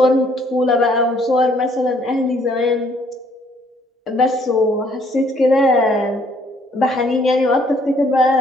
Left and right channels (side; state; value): both; normal; correlation 0.64